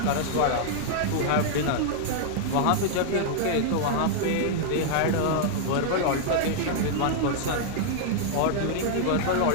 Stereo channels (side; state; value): both; different; correlation -0.01